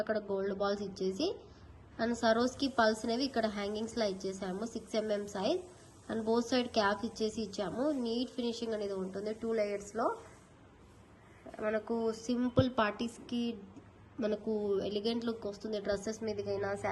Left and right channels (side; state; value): both; identical; correlation 1.00